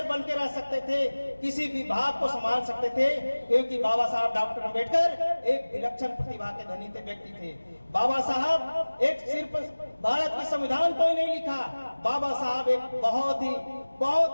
बन के रह सकते थे, किसी विभाग को संभाल सकते थे, क्योंकि बाबा साहब डॉक्टर अम्बेडकर एक विलक्षण प्रतिभा के धनी थे, व्यक्ति थे। बाबा साहब एक सिर्फ भारत के संविधान को ही नहीं लिखा, बाबा साहब एक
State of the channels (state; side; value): inverted; both; correlation -1.00